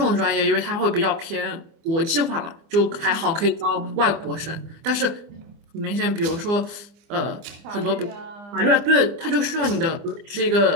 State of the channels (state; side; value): late; left; 25 ms